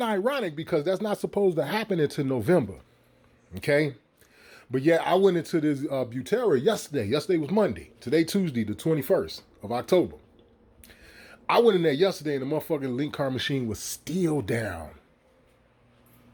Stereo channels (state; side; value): identical; both; correlation 1.00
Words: ironic because that's not supposed to happen until November, okay? But yeah, I went into this Butera yesterday. Yesterday was Monday. Today, Tuesday, the 21st of October. I went in there yesterday and the motherfucking link card machine was still down.